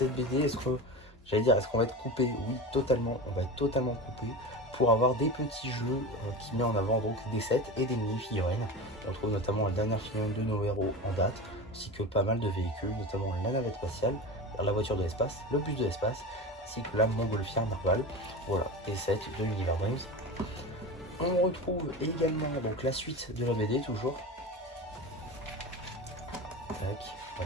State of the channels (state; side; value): normal; both; correlation 0.27